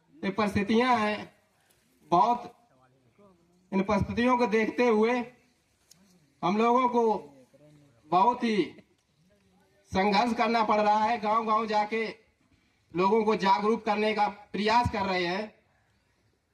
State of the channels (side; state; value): both; identical; correlation 1.00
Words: ये परिस्थितियां हैं। बहुत इन परिस्थितियों को देखते हुए हम लोगों को बहुत ही संघर्ष करना पड़ रहा है। गांव-गांव जाके लोगों को जागरूक करने का प्रयास कर रहे हैं,